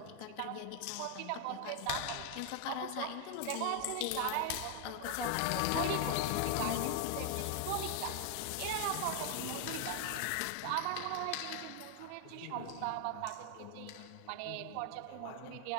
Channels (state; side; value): different; both; correlation 0.00